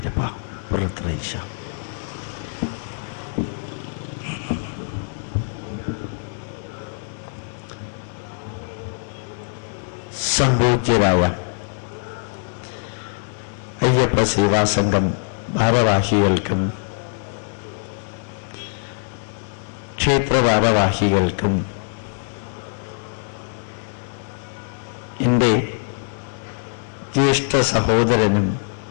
പുറത്രയിശ. സംപൂജ്യരായ അയ്യപ്പ സേവാസംഘം ഭാരവാഹികൾക്കും ക്ഷേത്ര ഭാരവാഹികൾക്കും എൻ്റെ ജ്യേഷ്ഠ സഹോദരനും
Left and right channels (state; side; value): silent; right; 62 dB below the other